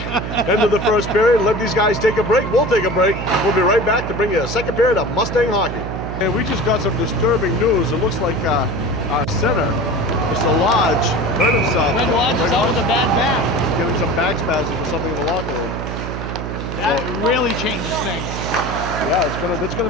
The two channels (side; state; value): right; noise; hum, 6 dB below the sound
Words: end of the first period. Let these guys take a break. We'll take a break. We'll be right back to bring you a second period of Mustang hockey. And we just got some disturbing news. It looks like our center, Mr. Lodge, hurt himself. Greg Lodge is out with a bad back. Getting some back spasms or something in the locker room. That really changes things. Yeah, it's gonna